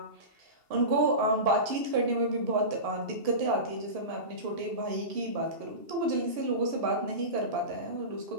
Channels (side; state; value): left; late; 2.7 ms